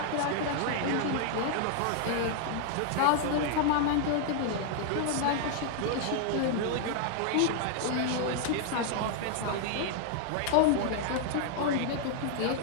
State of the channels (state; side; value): different; both; correlation 0.00